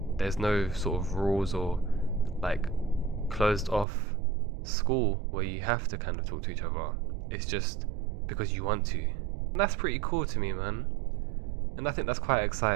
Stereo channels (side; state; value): left; drops out; at 3.9 s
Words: There's no sort of rules or like closed off school where you have to kind of talk to each other. It's just because you want to. And that's pretty cool to me, man. And I think that's quite